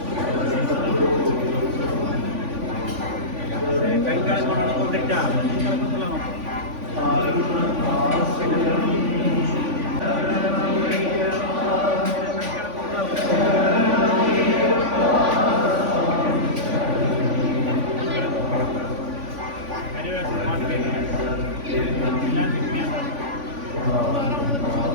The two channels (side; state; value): left; late; 3.5 ms